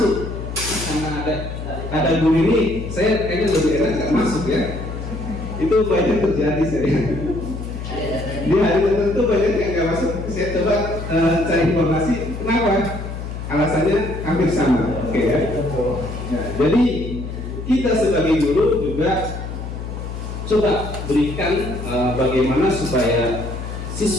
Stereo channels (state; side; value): noise; left; hum, 7 dB below the sound